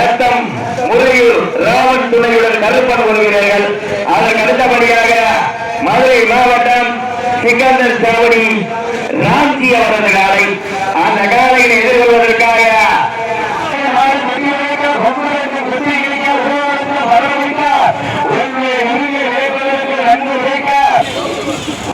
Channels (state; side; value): identical; both; correlation 1.00